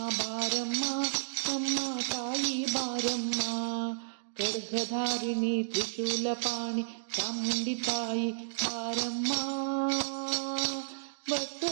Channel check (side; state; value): left; silent; digital silence